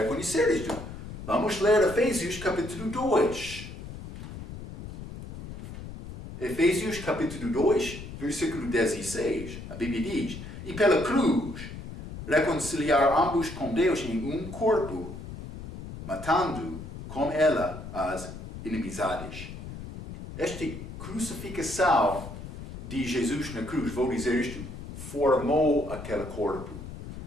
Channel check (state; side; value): noise; left; rumble, 11 dB below the sound